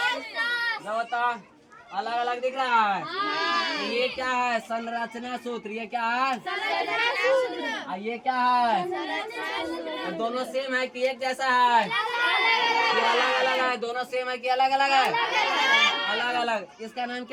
होता अलग अलग दिख रहा है। तो ये क्या है? संरचना सूत्र। ये क्या है? और ये क्या है? और दोनों सेम है कि एक जैसा है? ये अलग अलग है। दोनों सेम है कि अलग अलग है? अलग अलग। इसका नाम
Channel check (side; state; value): both; identical; correlation 1.00